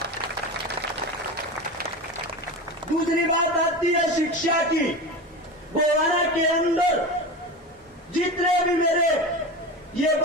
दूसरी बात आती है शिक्षा की। गोवाना के अंदर जितने भी मेरे ये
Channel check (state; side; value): normal; both; correlation 0.26